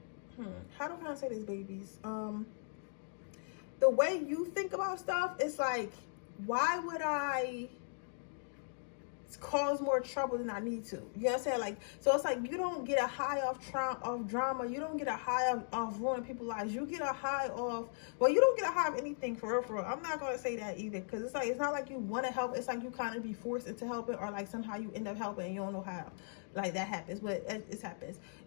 how do I say this, babies? The way you think about stuff, it's like, why would I cause more trouble than I need to? You know what I'm saying? Like, so it's like, you don't get a high off drama. You don't get a high off ruining people's lives. You get a high off, well, you don't get a high of anything, for real. I'm not going to say that either, because it's like, it's not like you want to help. It's like you kind of be forced into helping, or like somehow you end up helping and you don't know how. Like, that happens, but it happens.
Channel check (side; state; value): right; silent; digital silence